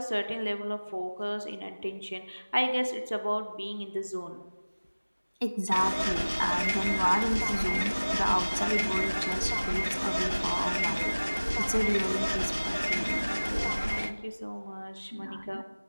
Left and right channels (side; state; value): both; inverted; correlation -1.00